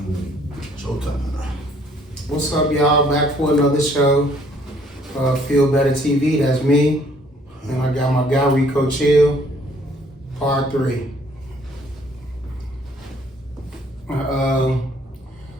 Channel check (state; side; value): normal; both; correlation 0.61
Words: Showtime. What's up, y'all? Back for another show. Feel Better TV. That's me. And I got my guy Rico Chill. Part 3.